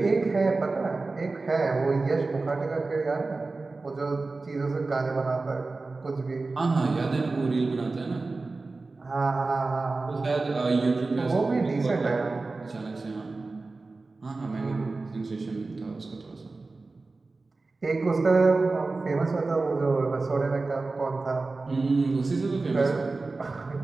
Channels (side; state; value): left; quieter; 3.6 dB